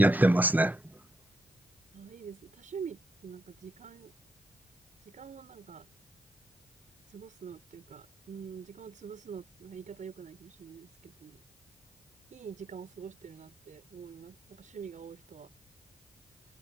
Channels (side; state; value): both; normal; correlation 0.79